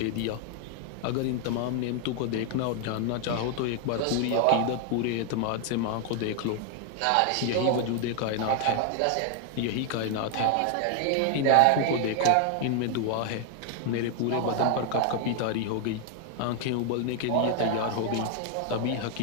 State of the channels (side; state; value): both; different; correlation 0.00